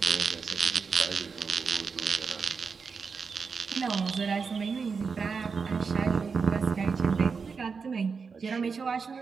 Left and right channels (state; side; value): quieter; left; 5.3 dB